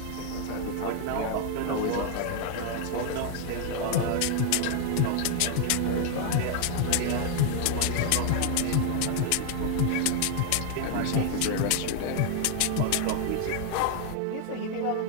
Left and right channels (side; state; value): both; different; correlation 0.00